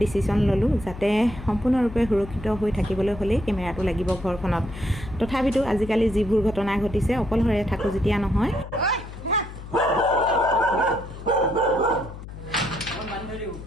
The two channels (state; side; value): noise; left; hum, 13 dB below the sound